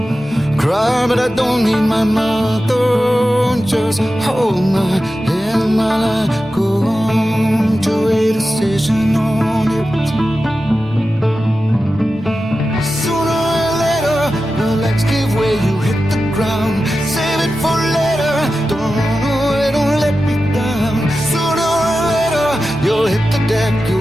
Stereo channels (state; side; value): normal; both; correlation 0.93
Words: Cry, but I don't need my mother. Just hold my hand while I go on to a decision on it. Sooner or later, your legs give way, you hit the ground. Save it for later, don't run away, don't let me down. Sooner or later, you'll hit the deck,